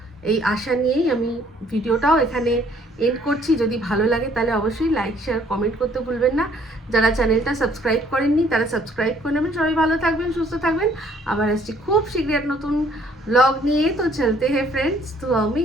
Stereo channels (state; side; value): normal; both; correlation 0.61